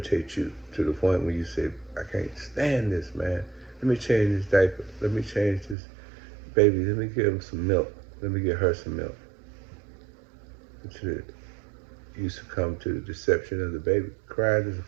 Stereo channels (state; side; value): drops out; left; at 5.8 s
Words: you to the point where you say, I can't stand this, man. Let me change this diaper. Let me change this baby. Let me give him some milk. Let me get her some milk. You succumb to the deception of the baby. Crying is